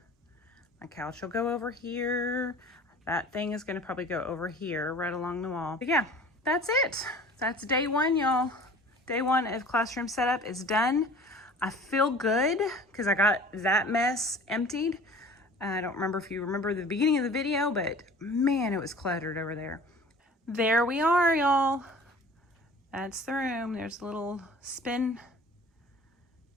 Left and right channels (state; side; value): normal; both; correlation 0.45